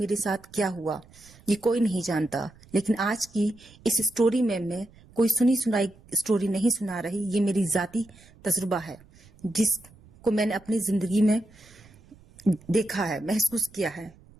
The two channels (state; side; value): noise; right; rumble, 25 dB below the sound